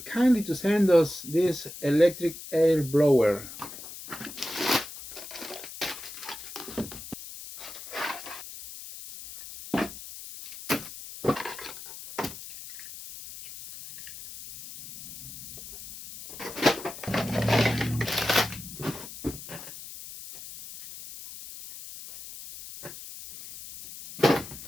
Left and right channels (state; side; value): noise; left; hiss, 13 dB below the sound